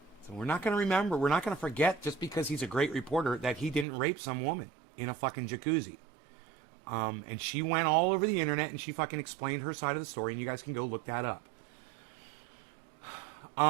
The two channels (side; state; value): left; drops out; at 3.9 s